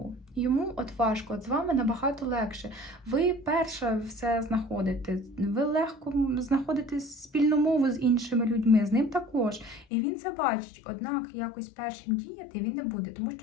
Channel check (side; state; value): right; drops out; at 9.9 s